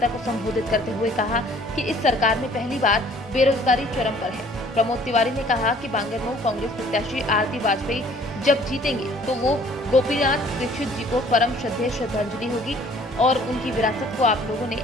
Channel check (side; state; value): both; normal; correlation 0.56